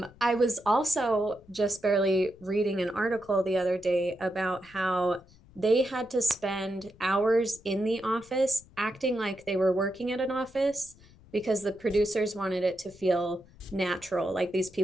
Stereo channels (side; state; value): left; noise; rumble, 25 dB below the sound